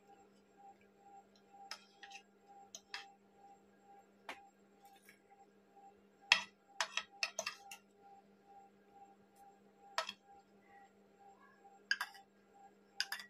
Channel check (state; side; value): identical; both; correlation 1.00